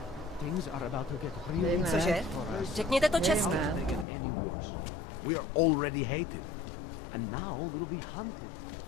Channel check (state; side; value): drops out; right; at 4.0 s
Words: things are about to get really Cože? Řekněte to čestně. We are already hated. And now we'll be hunted.